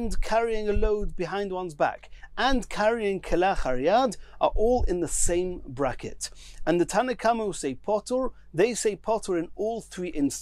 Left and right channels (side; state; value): both; identical; correlation 1.00